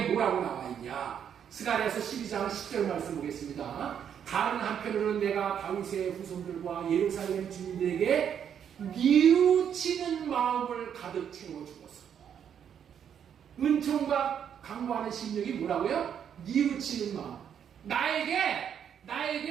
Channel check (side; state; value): left; quieter; 8.5 dB